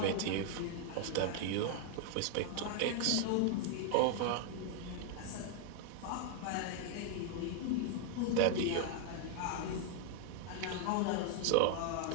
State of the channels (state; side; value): different; both; correlation 0.00